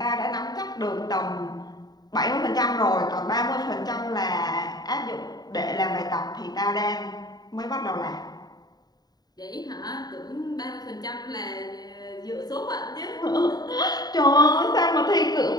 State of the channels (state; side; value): late; right; 0.19 ms